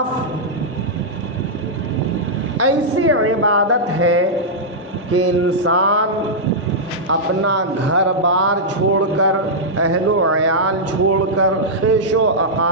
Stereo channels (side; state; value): both; normal; correlation -0.09